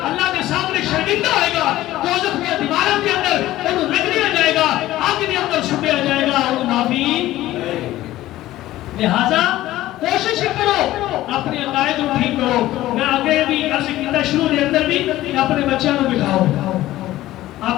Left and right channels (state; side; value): quieter; right; 15.4 dB